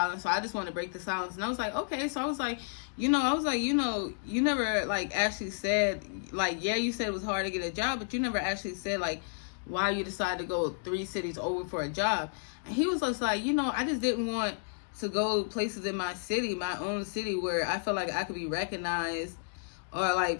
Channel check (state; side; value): silent; right; digital silence